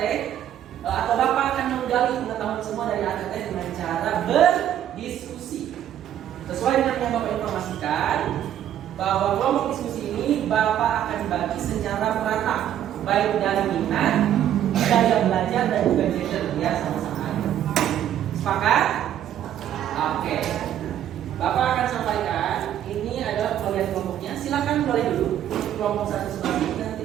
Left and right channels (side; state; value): left; quieter; 10.9 dB